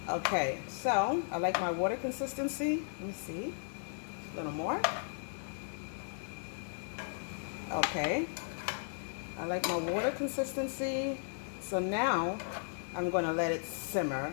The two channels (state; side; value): silent; right; digital silence